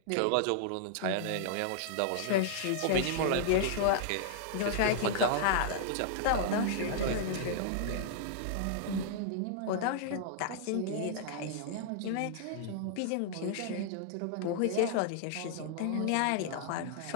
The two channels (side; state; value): both; different; correlation -0.01